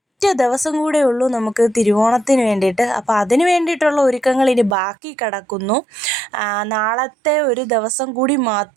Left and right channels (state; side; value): drops out; left; at 4.8 s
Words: ദിവസം കൂടെ ഉള്ളൂ നമുക്ക് തിരുവോണത്തിന് വേണ്ടിയിട്ട്. അപ്പോൾ അതിന് വേണ്ടിയിട്ടുള്ള ഒരുക്കങ്ങൾ ഇനി ബാക്കി കിടക്കുന്നു. നാളത്തെ ഒരു ദിവസം കൂടി